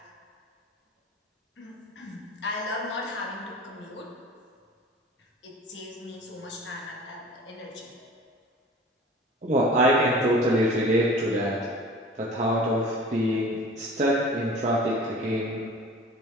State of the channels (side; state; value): both; normal; correlation 0.43